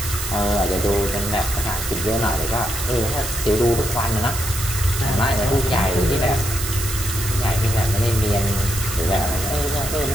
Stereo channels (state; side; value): noise; right; hiss, 6 dB below the sound